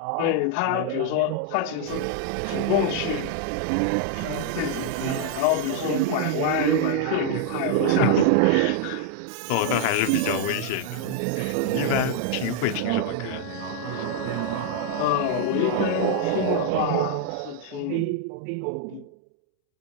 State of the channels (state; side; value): different; both; correlation 0.00